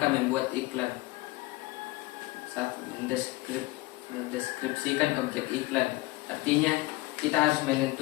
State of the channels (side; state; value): right; quieter; 20.8 dB